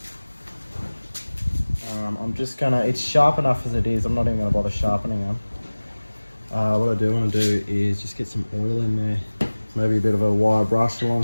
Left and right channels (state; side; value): inverted; both; correlation -1.00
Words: I'm just gonna, it's sharp enough as it is. I'm not even gonna bother sharpening them. What I do want to do is just get some oil in there. Maybe a bit of a wire brush along